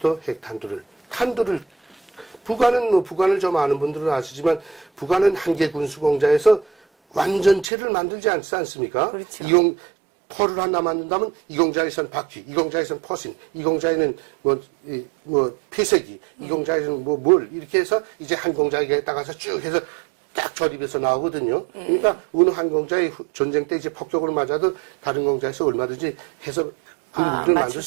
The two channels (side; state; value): left; drops out; at 7.7 s